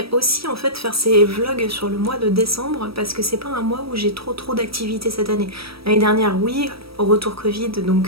aussi en fait faire ces vlogs sur le mois de décembre parce que c'est pas un mois où j'ai trop d'activités cette année. L'année dernière oui, au retour Covid,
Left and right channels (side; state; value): left; late; 0.76 ms